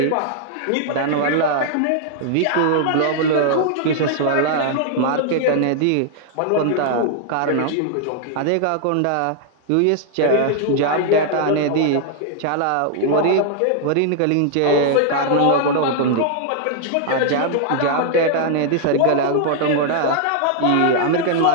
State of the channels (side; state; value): both; different; correlation 0.00